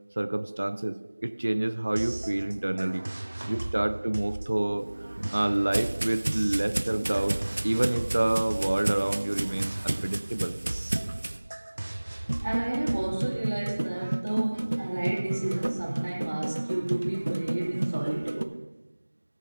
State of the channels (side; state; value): both; inverted; correlation -1.00